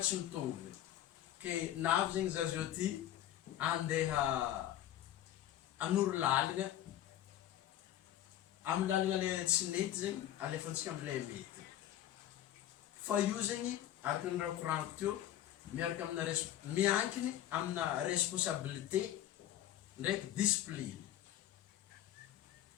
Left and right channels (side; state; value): right; quieter; 12.4 dB